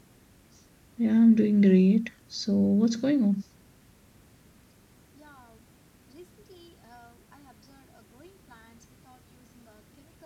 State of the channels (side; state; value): both; identical; correlation 1.00